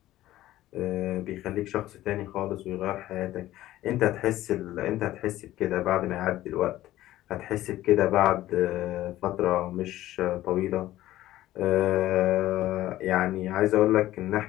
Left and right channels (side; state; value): right; quieter; 14.9 dB